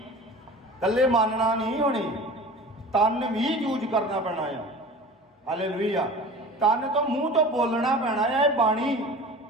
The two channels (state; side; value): normal; both; correlation 0.39